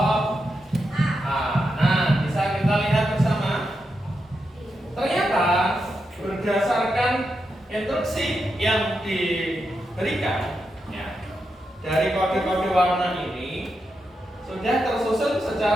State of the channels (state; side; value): normal; both; correlation 0.86